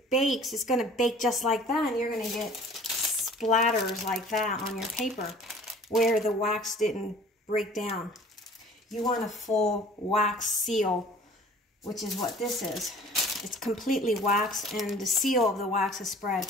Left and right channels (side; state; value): both; normal; correlation 0.49